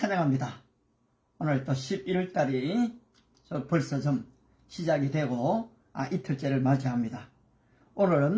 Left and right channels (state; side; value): identical; both; correlation 1.00